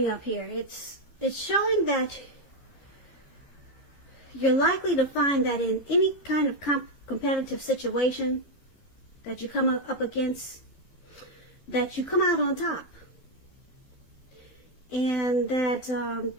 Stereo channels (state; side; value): late; right; 12 ms